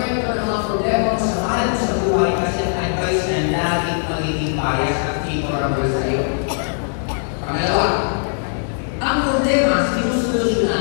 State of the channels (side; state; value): right; silent; digital silence